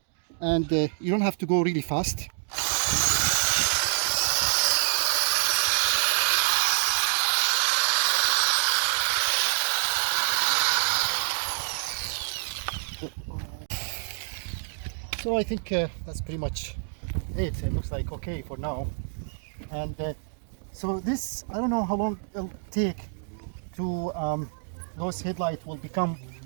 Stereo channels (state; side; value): silent; left; digital silence